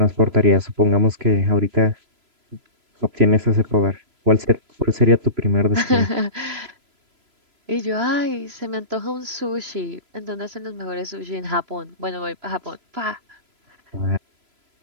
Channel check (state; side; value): late; left; 3.0 ms